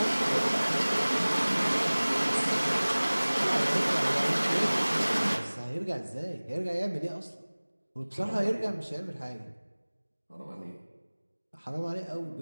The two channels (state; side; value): inverted; both; correlation -1.00